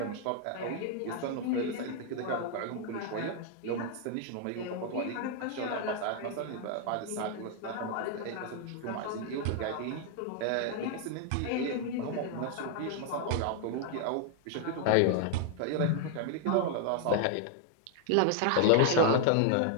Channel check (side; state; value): both; different; correlation 0.00